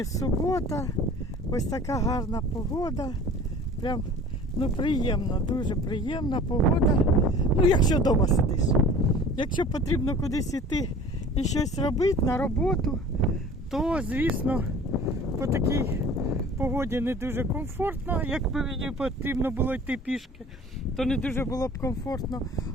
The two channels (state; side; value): normal; both; correlation 0.44